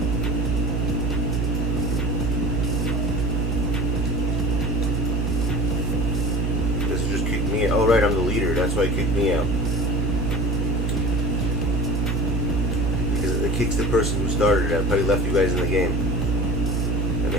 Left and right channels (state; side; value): normal; both; correlation 0.38